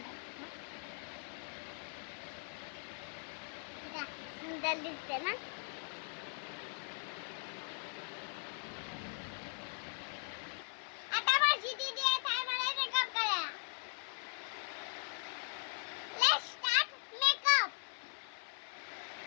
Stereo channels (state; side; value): silent; right; 51 dB below the other